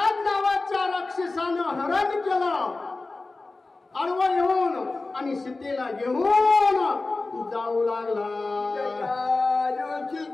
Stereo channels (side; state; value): right; quieter; 3.4 dB